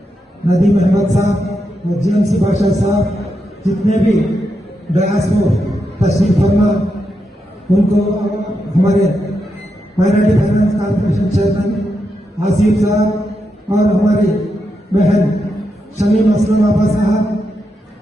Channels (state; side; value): normal; both; correlation 0.84